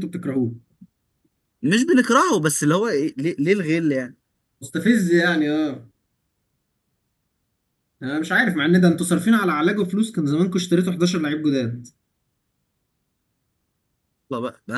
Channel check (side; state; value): both; identical; correlation 1.00